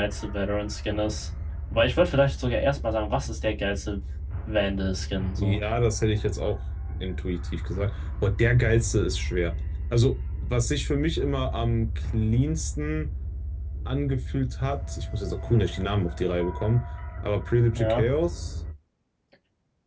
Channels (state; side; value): identical; both; correlation 1.00